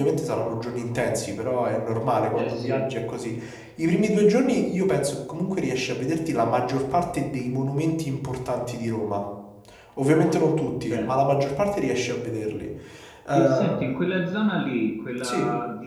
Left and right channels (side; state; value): both; identical; correlation 1.00